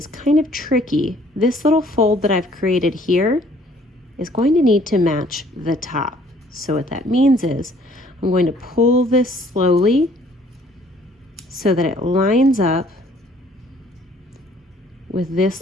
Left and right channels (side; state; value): both; normal; correlation 0.59